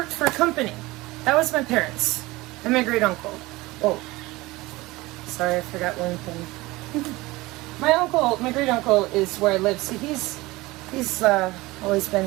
for a company. That was my parents and my great uncle. Oh, sorry, I forgot one thing. My great uncle is where I live. See, he's always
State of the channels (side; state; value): left; quieter; 20.7 dB